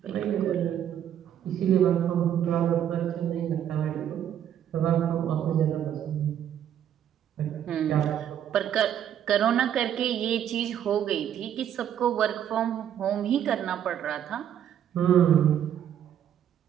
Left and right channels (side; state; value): left; quieter; 9.9 dB